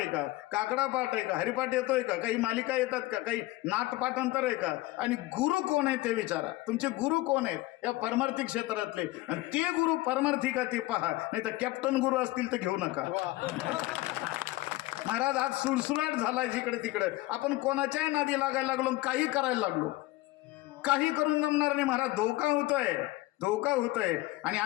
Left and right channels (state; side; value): quieter; right; 18.9 dB